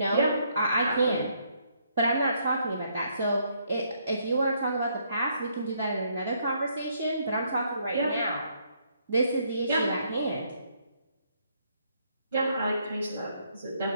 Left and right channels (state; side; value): inverted; both; correlation -0.71